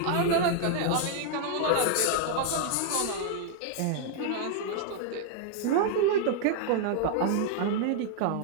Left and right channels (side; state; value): both; different; correlation 0.00